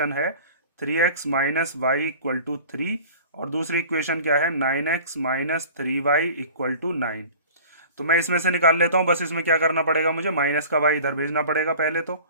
है 3x minus y equal to 3 और दूसरी इक्वेशन क्या है 9x minus 3y equal to 9। तो मैं इसमें से निकाल लेता हूँ। बस इसमें क्या करना पड़ेगा मुझे? माइनस का y इधर भेजना पड़ेगा पहले तो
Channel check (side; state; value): both; inverted; correlation -0.43